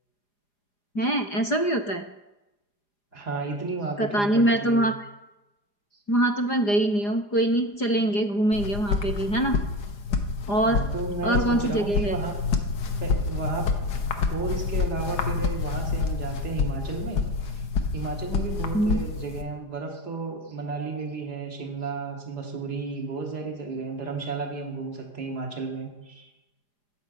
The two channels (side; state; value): right; late; 4.9 ms